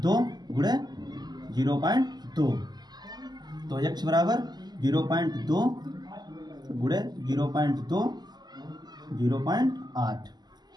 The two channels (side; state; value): left; late; 0.20 ms